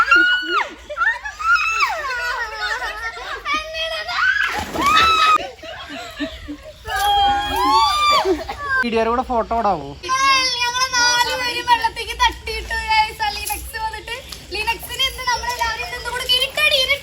വീഡിയോയുടെ കൂടെ ഫോട്ടോ ഇടാവോ?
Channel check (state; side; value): identical; both; correlation 1.00